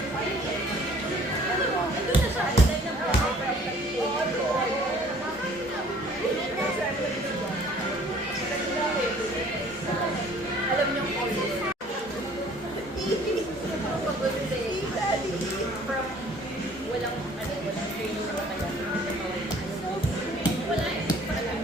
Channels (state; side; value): normal; both; correlation 0.54